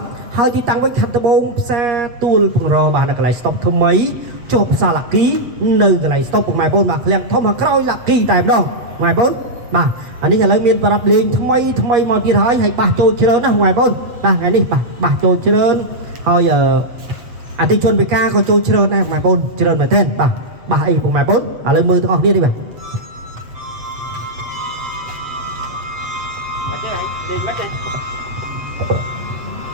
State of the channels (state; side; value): late; left; 8.0 ms